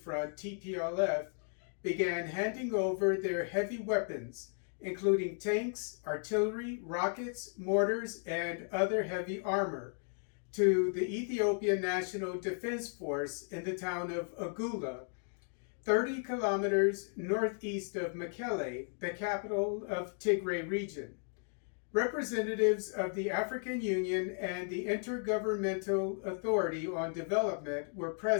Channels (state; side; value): silent; right; 54 dB below the other